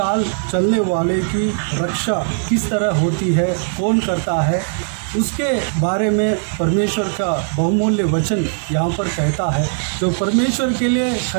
चलने वाले की रक्षा किस तरह होती है, कौन करता है, उसके बारे में परमेश्वर का बहुमूल्य वचन यहाँ पर कहता है। जो परमेश्वर के लिए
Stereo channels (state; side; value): silent; left; digital silence